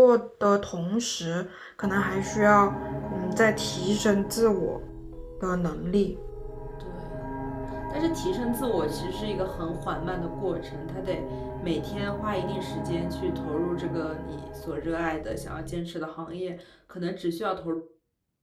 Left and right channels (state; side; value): identical; both; correlation 1.00